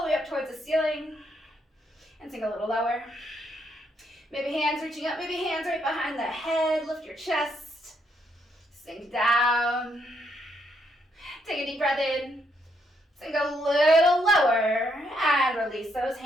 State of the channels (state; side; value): normal; both; correlation 0.75